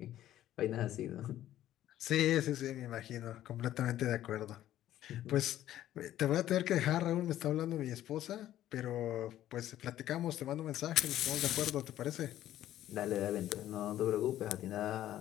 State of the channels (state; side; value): quieter; right; 12.9 dB